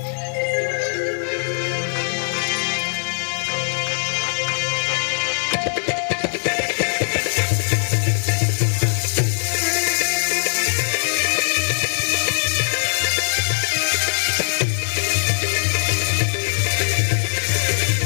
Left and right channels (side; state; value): right; silent; 65 dB below the other